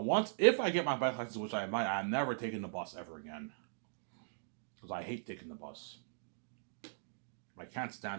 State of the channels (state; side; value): silent; left; digital silence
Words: if I get my bike license, which I might, I'm never taking the bus ever again, because I hate taking the bus. I can't